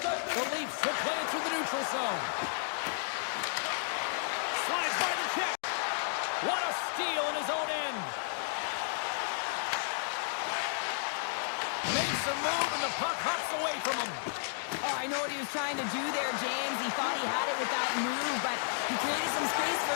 The Leafs will play it through the neutral zone. Slides by the check. What a steal in his own end. Makes a move and the puck hops away from him. Oh, I know what he was trying to do there, James. He thought he had it with that move, but he created some space for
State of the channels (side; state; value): right; silent; digital silence